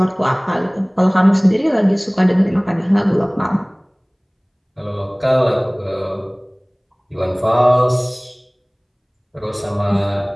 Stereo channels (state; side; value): identical; both; correlation 1.00